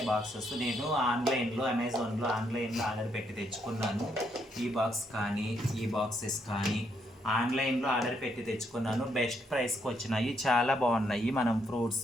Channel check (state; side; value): normal; both; correlation 0.75